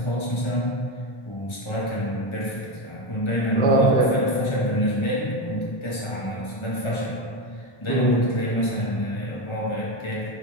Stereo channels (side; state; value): right; late; 1.3 ms